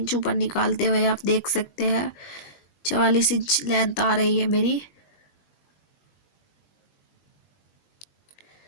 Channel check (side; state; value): right; late; 21 ms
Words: ऊपर निकालते हुए आप देख सकते हैं 44 इंच लेंथ आ रही है मेरी।